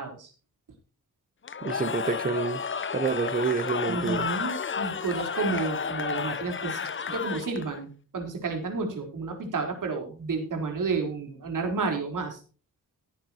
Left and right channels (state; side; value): normal; both; correlation 0.10